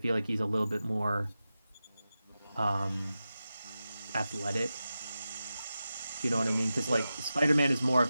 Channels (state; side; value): inverted; both; correlation -0.92